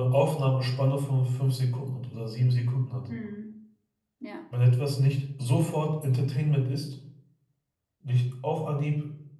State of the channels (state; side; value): identical; both; correlation 1.00